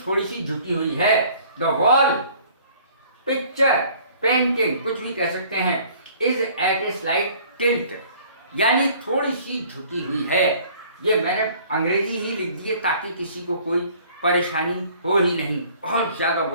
थोड़ी सी झुकी हुई है। द वॉल, पिक्चर, पेंटिंग, कुछ भी कह सकते हैं, is at a slight tilt, यानी थोड़ी सी झुकी हुई है। ये मैंने अंग्रेजी ही लिख दी है ताकि किसी को कोई परेशानी हो ही नहीं, बहुत ज़्यादा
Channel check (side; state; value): both; inverted; correlation -0.54